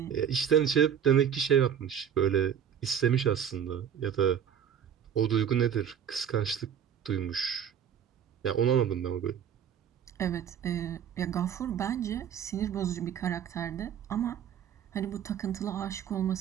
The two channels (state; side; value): quieter; left; 8.7 dB